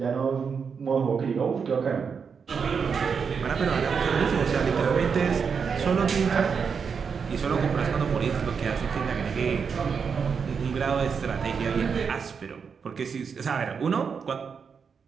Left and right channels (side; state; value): left; quieter; 6.1 dB